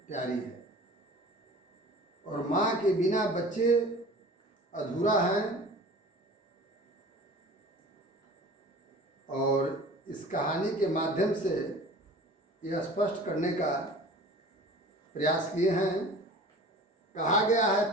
प्यारी है और माँ के बिना बच्चे अधूरा हैं। और इस कहानी के माध्यम से यह स्पष्ट करने का प्रयास किए हैं। कहा गया है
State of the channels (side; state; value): both; normal; correlation 0.42